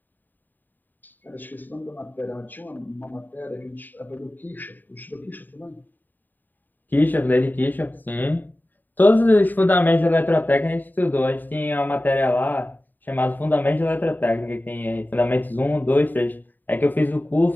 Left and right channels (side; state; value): right; late; 0.089 ms